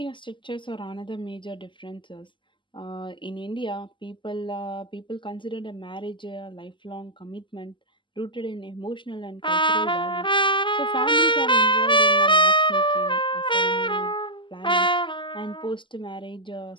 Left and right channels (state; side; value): late; right; 0.24 ms